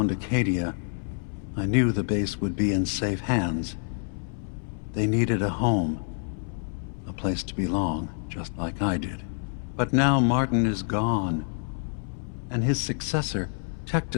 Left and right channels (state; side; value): silent; right; 60 dB below the other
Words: Acadia, I knew the base would be in safe hands. They needed a home, a place to belong, just like I did. But now Martin is gone, and his successor,